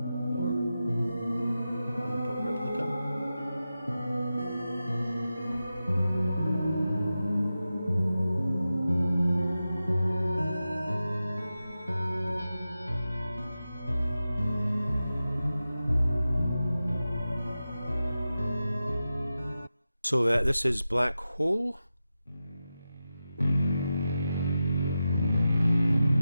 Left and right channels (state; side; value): inverted; both; correlation -0.92